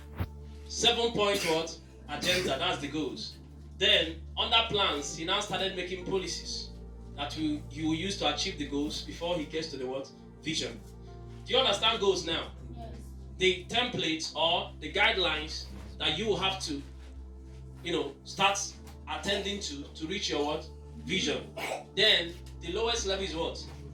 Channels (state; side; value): identical; both; correlation 1.00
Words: 7-point what? Agenda. That's the goals. Then, under plans, he now started making policies that he will use to achieve the goals before he gets to the what? Vision. Do you understand goals now? Yes. The templates or the guidelines that you will have to, start attending to reach your what? Vision. Then, the lowest level is what?